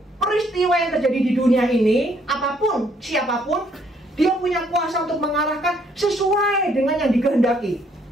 peristiwa yang terjadi di dunia ini, apapun, siapapun, Dia punya kuasa untuk mengarahkan sesuai dengan yang dikehendaki.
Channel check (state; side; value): normal; both; correlation 0.67